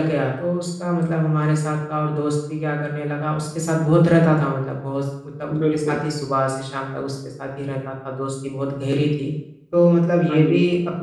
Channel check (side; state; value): both; identical; correlation 1.00